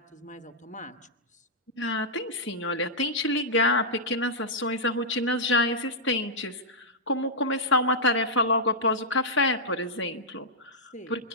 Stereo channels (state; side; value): normal; both; correlation -0.09